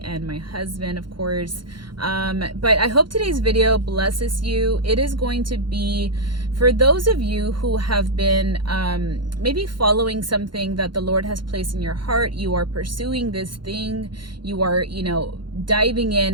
and my husband, of course. But I hope today's video blesses you. It is going to be for those of you who have been maybe following something that the Lord has placed in your heart. You are pursuing this thing. You are, diving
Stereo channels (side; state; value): left; late; 0.72 ms